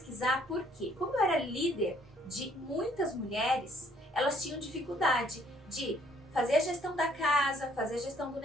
porque, como eu era líder de muitas mulheres, elas tinham dificuldade de fazer a gestão da casa, fazer a gestão do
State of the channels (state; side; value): normal; both; correlation 0.63